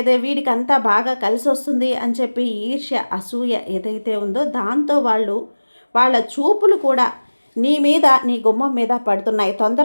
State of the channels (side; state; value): both; inverted; correlation -1.00